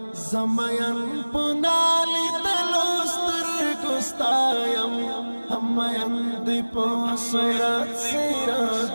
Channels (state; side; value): inverted; both; correlation -1.00